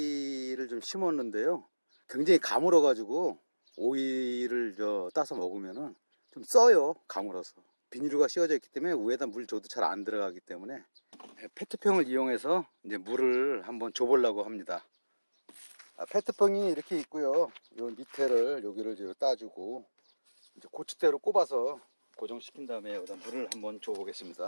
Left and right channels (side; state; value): both; inverted; correlation -1.00